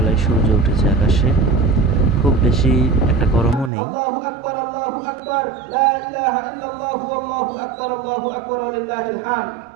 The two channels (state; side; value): drops out; left; at 3.7 s